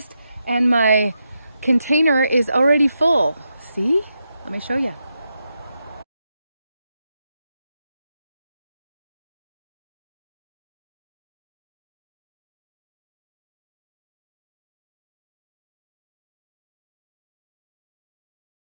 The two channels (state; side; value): inverted; both; correlation -0.85